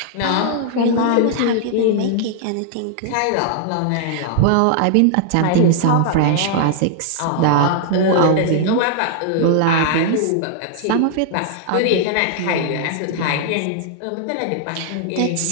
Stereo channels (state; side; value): different; both; correlation -0.01